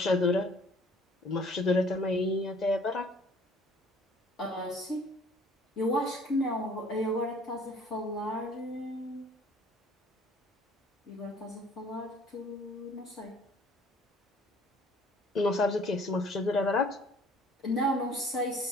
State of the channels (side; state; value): both; normal; correlation 0.54